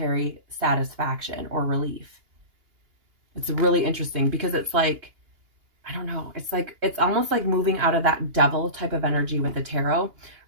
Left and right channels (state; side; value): late; left; 2.8 ms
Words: satisfaction or relief. It's really interesting because it's like, I don't know, it's like, it's almost like moving out of that devil type of energy with the tarot,